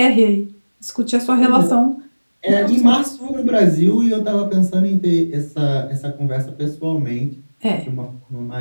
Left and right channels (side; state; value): both; inverted; correlation -1.00